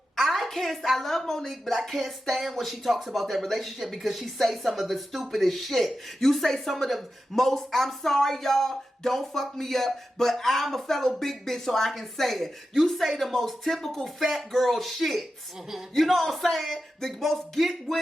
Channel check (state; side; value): normal; both; correlation 0.91